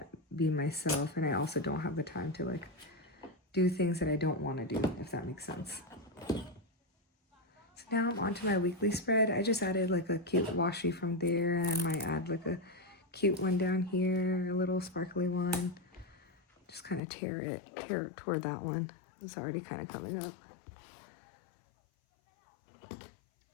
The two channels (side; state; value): right; drops out; at 17.0 s